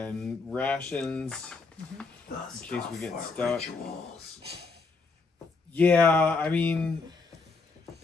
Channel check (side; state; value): right; quieter; 4.1 dB